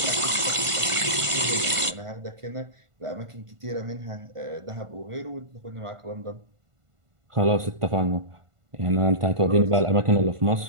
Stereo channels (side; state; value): left; late; 1.5 ms